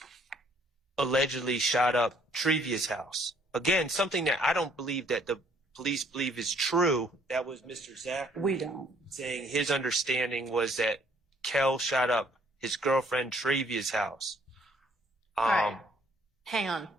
allegedly shot up Trevia's house. Again, something that I don't believe that the police believe is true. That was Mr. Zachary. We don't. Saying his understanding was that Kel shot up his girlfriend Trevia's house. All right. Hang on.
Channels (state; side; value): normal; both; correlation 0.63